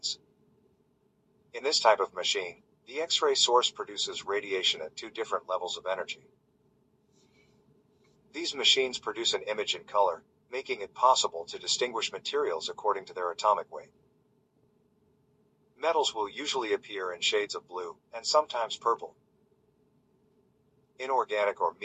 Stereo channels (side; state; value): both; identical; correlation 1.00